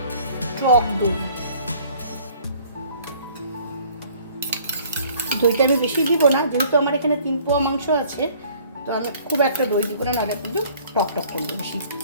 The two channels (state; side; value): inverted; both; correlation -0.55